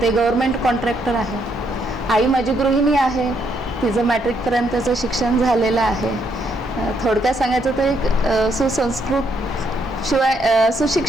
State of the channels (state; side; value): normal; both; correlation 0.74